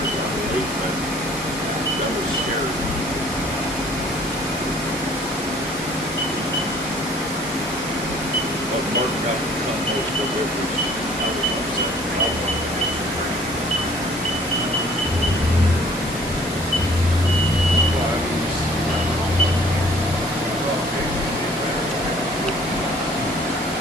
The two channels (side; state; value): both; normal; correlation 0.55